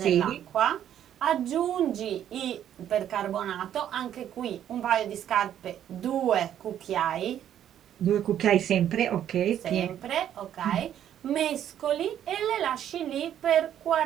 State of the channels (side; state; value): left; quieter; 10.5 dB